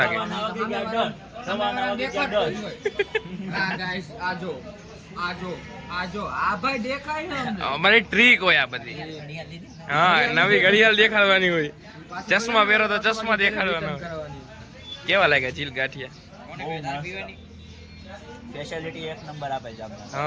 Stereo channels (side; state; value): both; identical; correlation 1.00